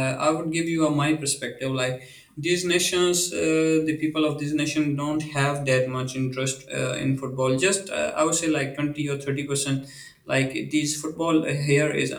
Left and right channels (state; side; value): identical; both; correlation 1.00